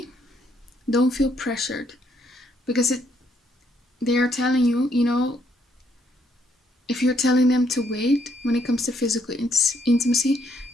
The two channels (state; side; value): normal; both; correlation 0.71